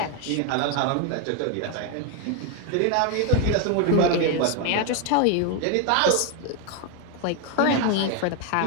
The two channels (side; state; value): both; different; correlation 0.01